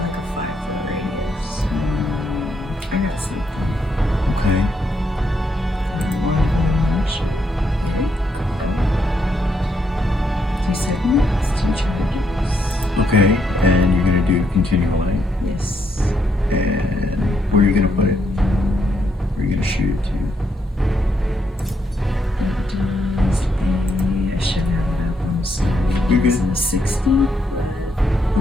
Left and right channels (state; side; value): normal; both; correlation 0.76